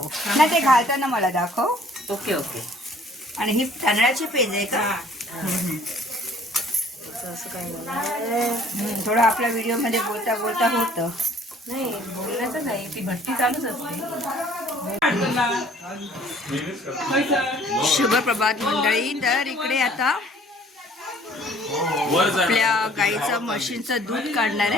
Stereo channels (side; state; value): both; normal; correlation 0.56